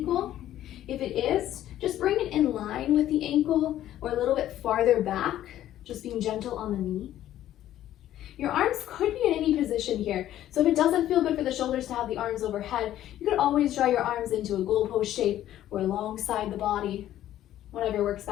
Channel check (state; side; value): quieter; right; 12.6 dB